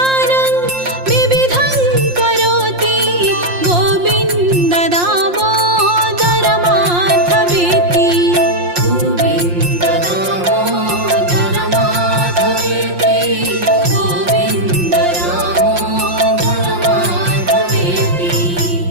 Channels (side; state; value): left; late; 5.7 ms